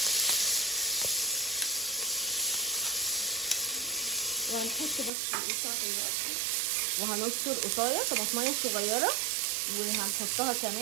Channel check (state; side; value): drops out; left; at 5.1 s